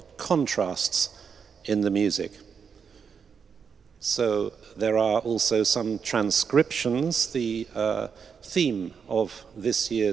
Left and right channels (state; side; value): quieter; left; 6.5 dB